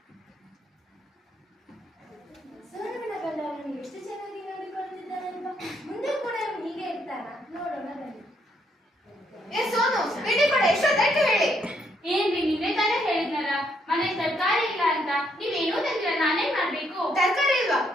ಸೋನುವಿನ ಗಂಡ ಅವನು ಎಷ್ಟು ಚೆನ್ನಾಗಿ ನೋಡಿಕೊಳ್ಳುತ್ತಿದ್ದಾನಲ್ವಾ? ಮುಂದೆ ಕೂಡ ಅವನು ಹೀಗೆ ಇರ್ತಾನ? ನೋಡೋಣ ಬನ್ನಿ. ಏ ಸೋನು, ತಿಂಡಿ ಕೊಡೆ. ಎಷ್ಟೊತ್ತಾಯ್ತು ಹೇಳಿ? ಏನ್ರಿ, ನೀವೇ ತಾನೇ ಹೇಳಿದ್ನಲ್ಲ ಮನೆ ತರಕಾರಿ ಇಲ್ಲ ಅಂತ. ನೀವೇನೂ ತಂದಿಲ್ಲ, ನಾನೇನ್ ಮಾಡ್ಬೇಕು? ತರಕಾರಿ ಇಲ್ವಾ?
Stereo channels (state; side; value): normal; both; correlation 0.73